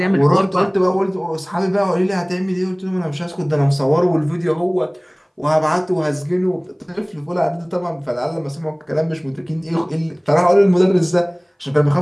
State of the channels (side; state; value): both; identical; correlation 1.00